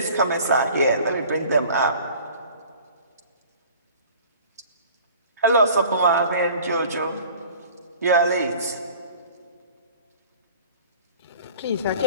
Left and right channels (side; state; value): both; inverted; correlation -0.47